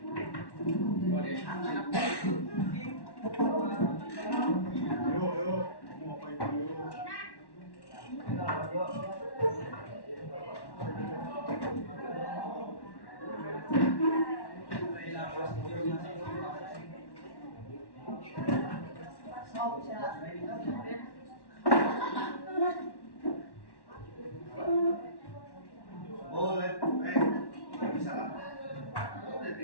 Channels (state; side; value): late; right; 1.1 ms